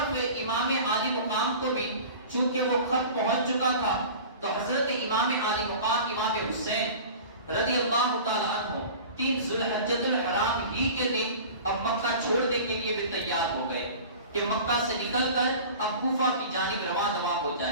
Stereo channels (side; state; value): both; inverted; correlation -0.39